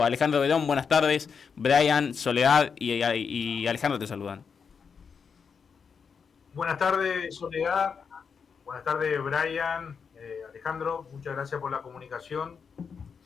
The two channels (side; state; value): right; quieter; 6.1 dB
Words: Alejandro Bedón, buenas tardes. Brian, Soledad y Alejandro te saludan. Buenas tardes, Soledad. Buenas tardes, Brian. Alejandro, muchas gracias por la comunicación.